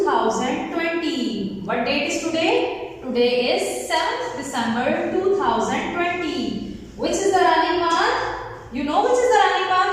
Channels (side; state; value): both; identical; correlation 1.00